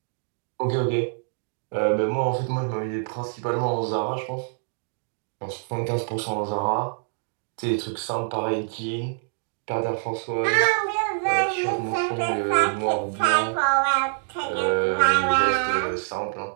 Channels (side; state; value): left; silent; digital silence